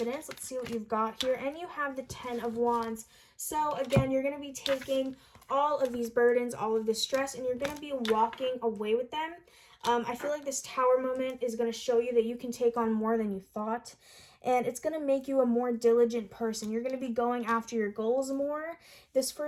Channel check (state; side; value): identical; both; correlation 1.00